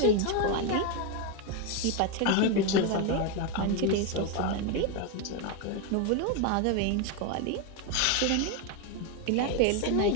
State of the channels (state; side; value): different; both; correlation 0.02